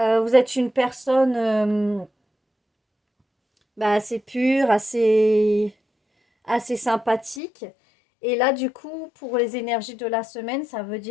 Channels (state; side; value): drops out; right; at 7.4 s